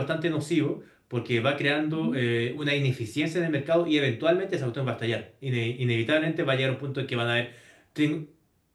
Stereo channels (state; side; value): identical; both; correlation 1.00